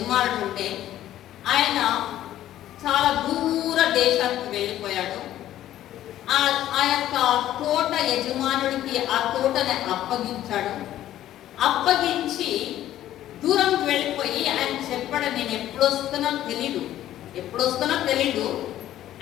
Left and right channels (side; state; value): right; quieter; 12.9 dB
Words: ఉంటే ఆయన చాలా దూర దేశానికి వెళ్ళిపోయాడు. ఆ యొక్క తోట యజమానుడికి ఆ తోటని అప్పగించి దూరంకి వెళ్ళిపోయి ఆయన చెప్పాడు, నేను ఎప్పుడు వస్తున్నా తెలీదు,